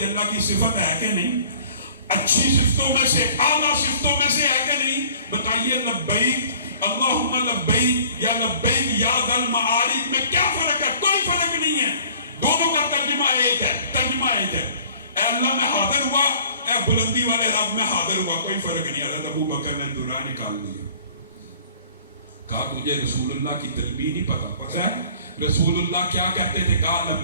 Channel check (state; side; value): inverted; both; correlation -0.51